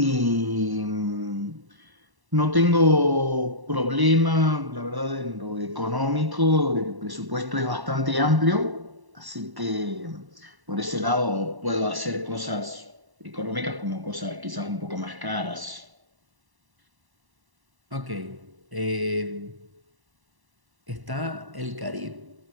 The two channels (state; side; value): late; left; 1.1 ms